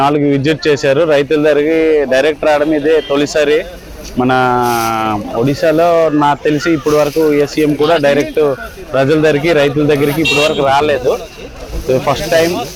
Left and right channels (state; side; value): identical; both; correlation 1.00